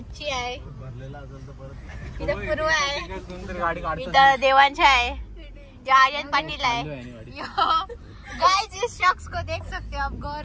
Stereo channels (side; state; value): both; identical; correlation 1.00